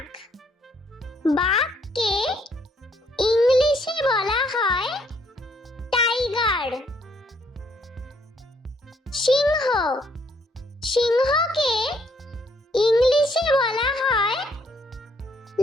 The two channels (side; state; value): both; normal; correlation 0.68